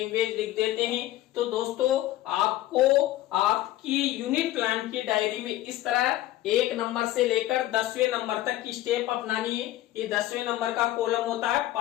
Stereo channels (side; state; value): right; quieter; 15.2 dB